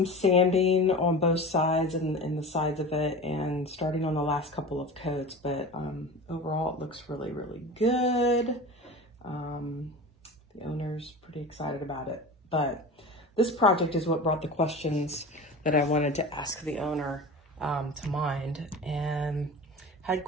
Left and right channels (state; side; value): normal; both; correlation 0.33